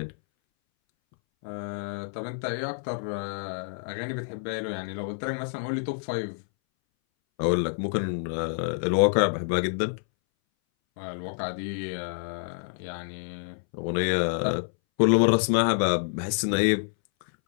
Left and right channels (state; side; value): silent; right; 60 dB below the other